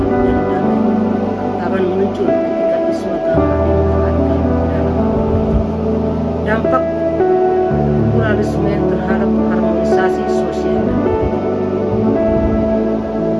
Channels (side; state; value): both; identical; correlation 1.00